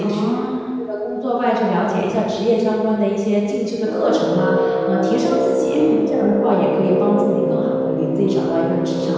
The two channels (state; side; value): identical; both; correlation 1.00